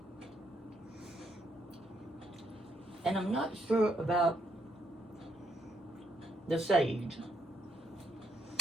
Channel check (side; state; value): both; normal; correlation 0.74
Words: And I'm not sure about the sage.